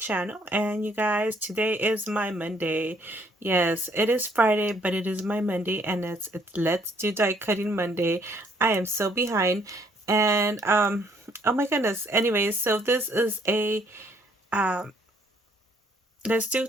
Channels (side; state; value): both; normal; correlation 0.65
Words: And you guys, today is my Monday. Yes, it is Friday, but it is my Monday, and it's Let's Do Die Cutting Monday. I am so behind, and oh my goodness. Anyways, so this is a um Let's Do